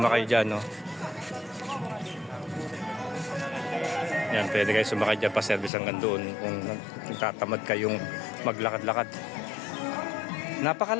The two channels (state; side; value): drops out; right; at 5.7 s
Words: dyan, no? Yan, pwede kayo sumakay dyan, pa-service hanggang doon kung tatamad kayong maglakad-lakad.